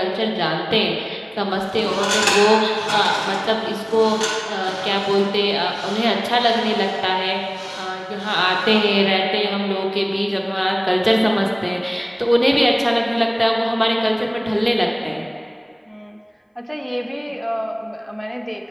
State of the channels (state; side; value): identical; both; correlation 1.00